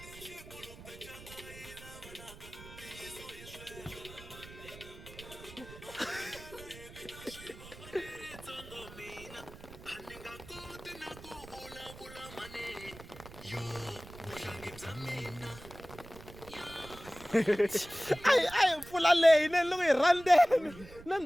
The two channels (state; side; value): noise; right; rumble, 17 dB below the sound